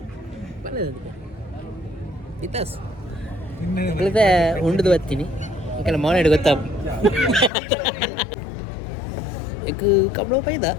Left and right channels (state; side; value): drops out; right; at 7.5 s